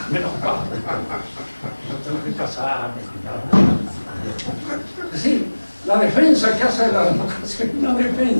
menos caro. No tengo que casarme ni nada. Es decir, la defensa que hace de la democracia es una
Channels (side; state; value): both; inverted; correlation -1.00